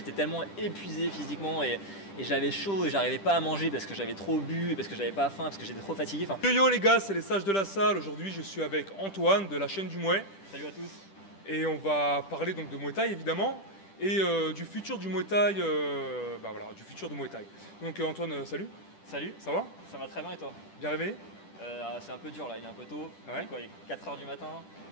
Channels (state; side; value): late; right; 10 ms